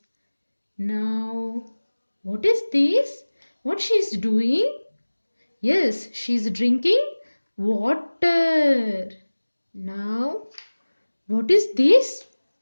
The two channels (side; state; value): both; inverted; correlation -1.00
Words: Now, what is this? What she is doing? Yes, she is drinking water. Now, what is this?